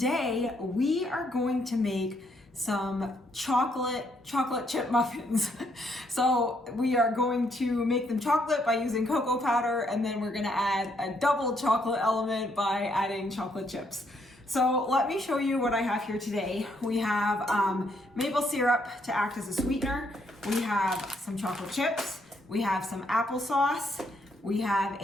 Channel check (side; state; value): both; normal; correlation 0.73